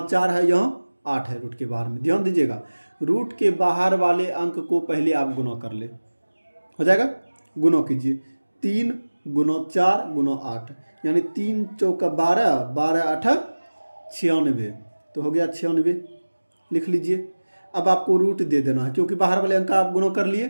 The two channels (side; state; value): both; inverted; correlation -1.00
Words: 4 है, यहाँ 8 है रूट के बाहर में। ध्यान दीजिएगा, रूट के बाहर वाले अंक को पहले आप गुणा कर ले, हो जाएगा। गुणा कीजिए 3 गुणा 4 गुणा 8, यानी 3 चौका 12, 12 8 96, तो हो गया 96, लिख लीजिए। अब आपको रूट दे देना है, क्योंकि बाहर वाले अंक का आप गुणा कर लिए,